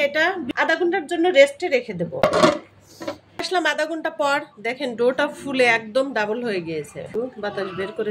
এটা আধা ঘন্টার জন্য রেস্টে রেখে দেব। আসলাম আধা ঘন্টা পর, দেখেন ডোটা ফুলে একদম ডাবল হয়ে গিয়েছে। বাতাস বের করে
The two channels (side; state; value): both; identical; correlation 1.00